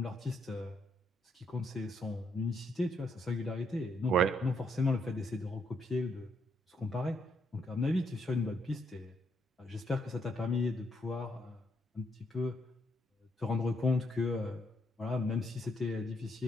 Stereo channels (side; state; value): both; normal; correlation 0.74